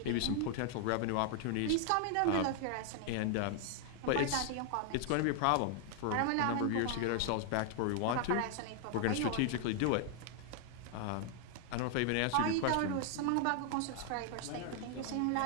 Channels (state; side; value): different; both; correlation 0.00